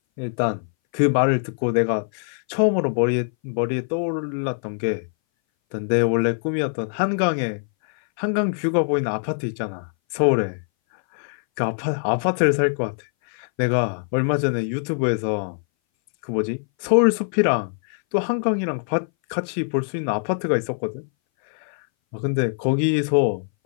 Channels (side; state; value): right; silent; 60 dB below the other